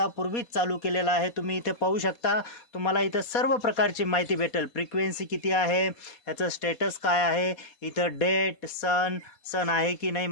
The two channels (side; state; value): right; late; 4.2 ms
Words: चालू केलेला आहे। तुम्ही इथे पाहू शकता, तुम्हाला इथं सर्व प्रकारची माहिती भेटेल। फ्रिक्वेन्सी किती आहे, याचं स्टेटस काय आहे, इथं डेट, सन आहे की नाही,